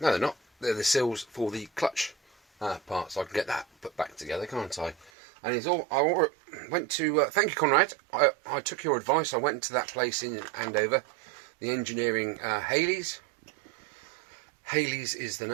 they're not. They're the seals for the clutch part, so I can get that put back together, can't I? And it's all. I went to. Thank you, Conrad. I took your advice. I went to that place in Andover, the engineering Haley's. Haley's is the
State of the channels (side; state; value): left; drops out; at 5.1 s